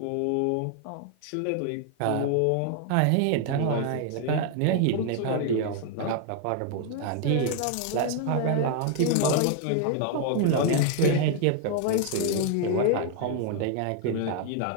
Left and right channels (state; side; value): different; both; correlation 0.00